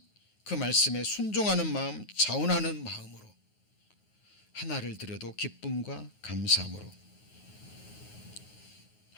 그 말씀에 순종하는 마음, 자원하는 마음으로 하나를 드려도 기쁨과 감사함으로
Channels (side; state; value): right; late; 9.5 ms